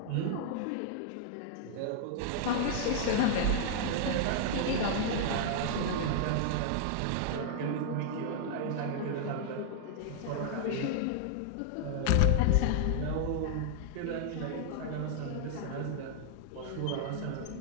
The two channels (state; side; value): different; both; correlation -0.01